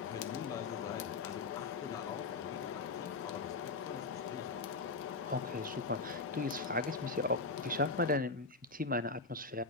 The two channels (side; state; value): right; quieter; 3.9 dB